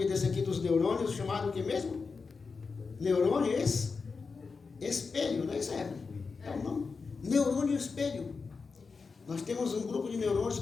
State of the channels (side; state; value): right; quieter; 4.8 dB